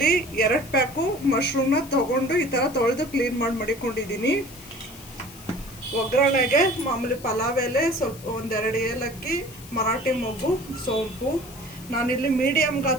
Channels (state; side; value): noise; left; hiss, 18 dB below the sound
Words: 2 ಪ್ಯಾಕು ಮಶ್ರೂಮ್ನ ತೊಗೊಂಡು ಈ ಥರ ತೊಳೆದು ಕ್ಲೀನ್ ಮಾಡಿ ಮಡಿಕೊಂಡಿದ್ದೀನಿ. ಒಗ್ಗರಣೆಗೆ ಮಾಮೂಲಿ ಪಲಾವ್ ಎಲೆ, ಸ್ವಲ್ಪ 1-2 ಏಲಕ್ಕಿ, ಮರಾಠಿ ಮೊಗ್ಗು, ಸೋಂಪು. ನಾನಿಲ್ಲಿ ಮೀಡಿಯಮ್